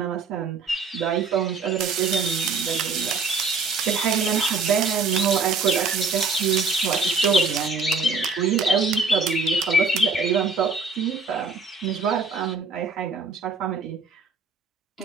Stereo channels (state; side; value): quieter; left; 4.2 dB